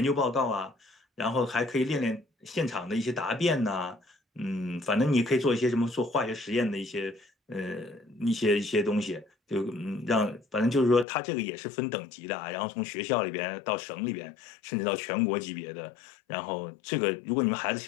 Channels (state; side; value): drops out; right; at 11.1 s